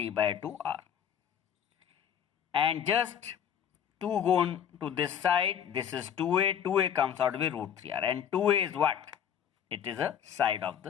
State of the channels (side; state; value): right; quieter; 8.9 dB